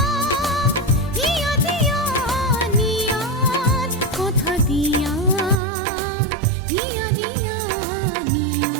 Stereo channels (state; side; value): drops out; left; at 5.6 s